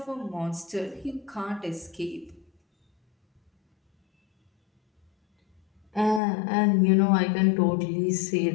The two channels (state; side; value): drops out; right; at 6.2 s